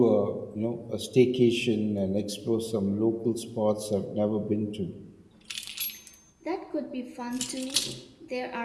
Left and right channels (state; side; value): identical; both; correlation 1.00